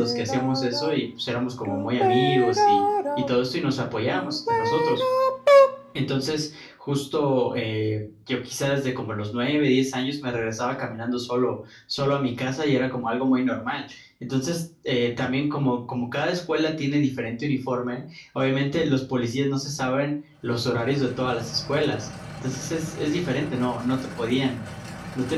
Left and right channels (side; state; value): both; identical; correlation 1.00